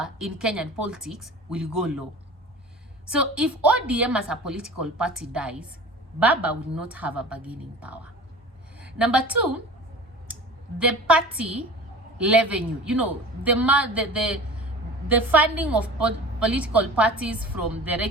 in Kenyan politics will go low. So if ODM as a political party dies, Baba will not have a bargaining power. Number two, the party revenue, you know, the funding of political parties from the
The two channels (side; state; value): both; normal; correlation 0.38